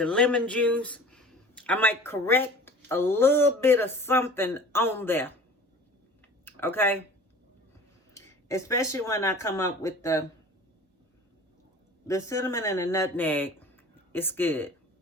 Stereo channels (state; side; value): normal; both; correlation 0.43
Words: lemon juice. I might correct a little bit of something on there. Okay? Especially when I come up with the cinnamon and the nutmeg. It's good.